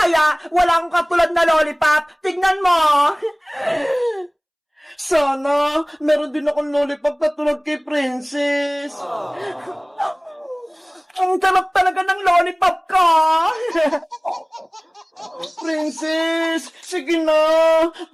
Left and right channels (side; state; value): both; identical; correlation 1.00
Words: wala akong katulad na lollipop. Tignan mo. Sana, meron din akong lollipop na tulad kay Princess. Ang sarap talaga ng lollipop ka. Princess, sige na.